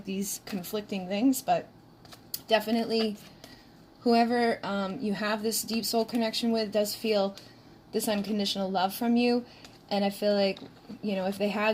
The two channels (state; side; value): identical; both; correlation 1.00